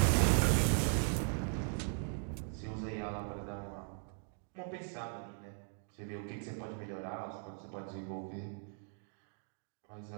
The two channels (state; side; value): silent; left; 52 dB below the other